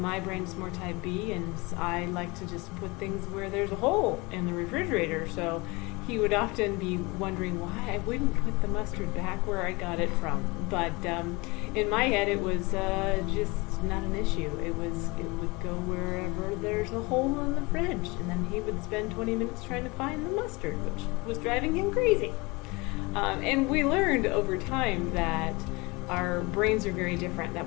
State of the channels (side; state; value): right; quieter; 25.3 dB